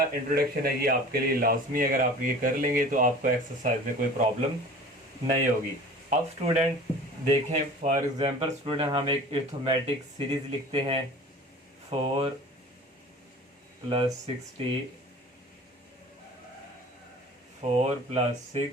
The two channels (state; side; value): normal; both; correlation 0.42